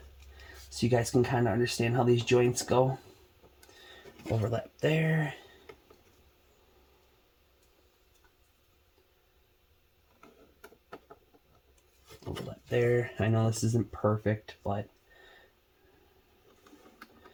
so you guys can kind of understand how these joints go. Overlap there. Overlap there. I know this isn't perfect, but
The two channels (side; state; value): both; identical; correlation 1.00